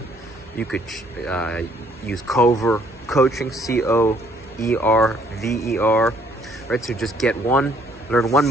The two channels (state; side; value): normal; both; correlation 0.63